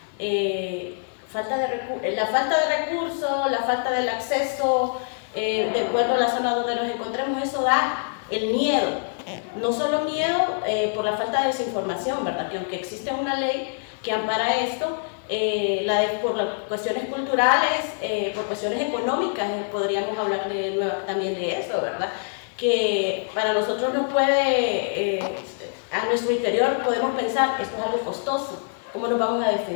la falta de recursos, la falta del acceso, de acuerdo a la zona donde nos encontremos. Eso da el miedo, no solo miedo por la falta de desinformación, ¿verdad?, que aunque existe una ley que ampara esto, por las cuestiones culturales, por cuestiones económicas, podríamos hablar también de eso, ¿verdad? Que para nosotros no puede, a nuestro interior podemos pensar, esto es algo costoso, ¿cómo nos vamos a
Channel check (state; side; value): silent; right; digital silence